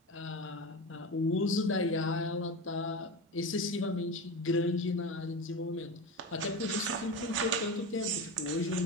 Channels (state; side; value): normal; both; correlation 0.24